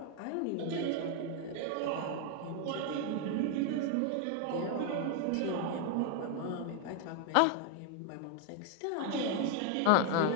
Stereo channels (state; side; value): different; both; correlation 0.01